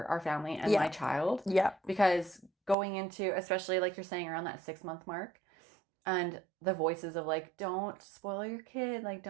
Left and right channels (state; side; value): drops out; left; at 2.8 s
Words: our family and my child. Yeah. Because going into, especially like you're saying around that 6-month mark, and the voices of like, don't spoil your kid, like